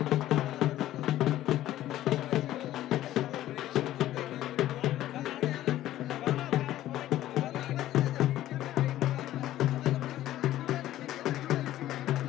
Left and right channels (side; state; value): right; quieter; 13.8 dB